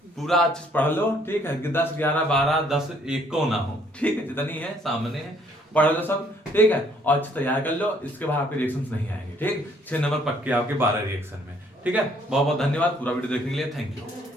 पूरा अच्छे से पढ़ लो, ठीक है, कि 10, 11, 12, 10 एक को ना हो, ठीक है, जितनी है सामने है पढ़ लो सब, ठीक है, और अच्छे तैयार कर लो। इसके बाद आपके रिएक्शंस नहीं आएंगे, ठीक, 6 नंबर पक्के आपके 12 रिएक्शन में, ठीक है। बहुत बहुत धन्यवाद पूरा वीडियो देखने के लिए, थैंक यू।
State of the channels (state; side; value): normal; both; correlation 0.64